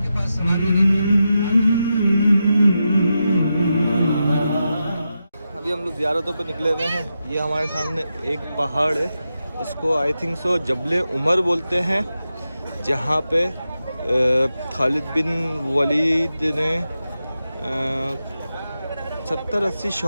पास सवारी नहीं थी। अभी हम लोग ज़ियारतों पे निकले हुए हैं। ये हमारे सामने एक पहाड़ है, इसको आई थिंक सो जबले उमर बोलते हैं, जहाँ पे खालिद बिन वलीद ने 70-80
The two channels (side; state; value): both; inverted; correlation -0.89